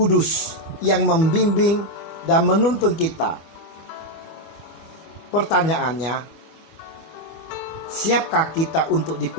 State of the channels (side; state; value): right; late; 25 ms